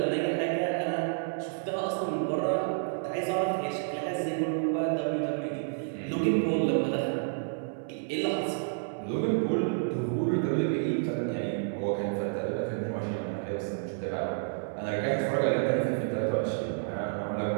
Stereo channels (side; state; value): left; silent; 58 dB below the other